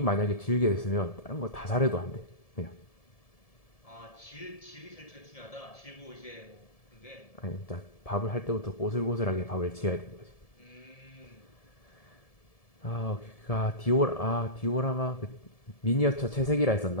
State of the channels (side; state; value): right; late; 1.7 ms